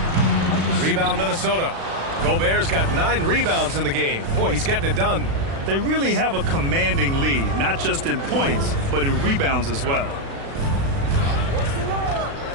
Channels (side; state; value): left; late; 36 ms